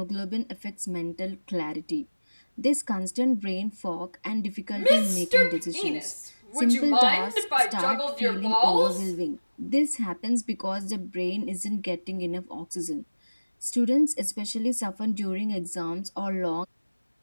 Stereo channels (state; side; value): inverted; both; correlation -1.00